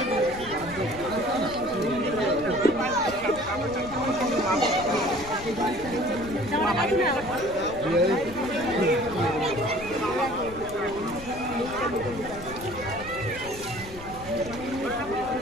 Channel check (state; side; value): noise; left; rumble, 15 dB below the sound